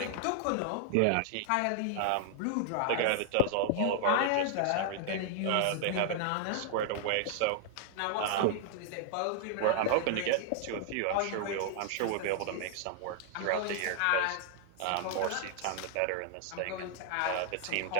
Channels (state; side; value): different; both; correlation 0.00